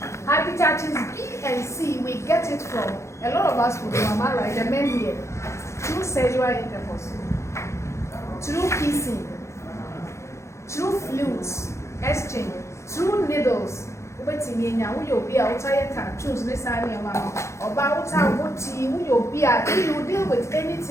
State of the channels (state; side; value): late; right; 0.14 ms